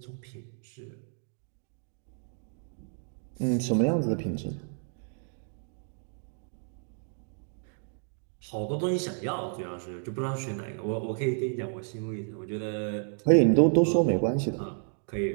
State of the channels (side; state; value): left; silent; 57 dB below the other